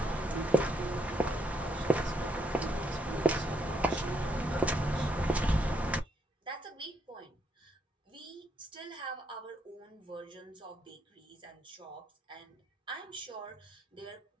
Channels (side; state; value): both; normal; correlation 0.75